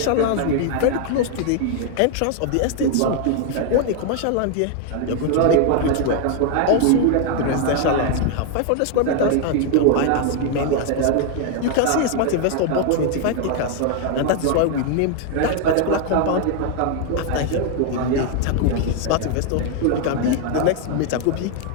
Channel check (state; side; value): different; both; correlation 0.00